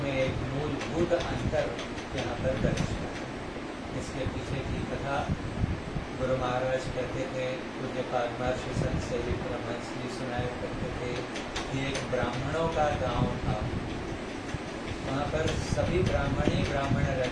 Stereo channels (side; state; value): both; identical; correlation 1.00